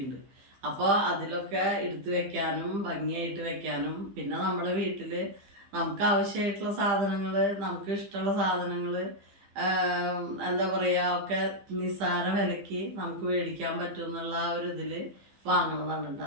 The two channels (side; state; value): left; late; 15 ms